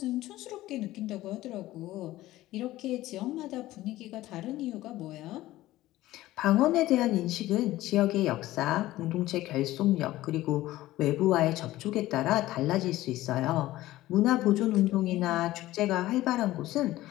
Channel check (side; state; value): right; quieter; 16.2 dB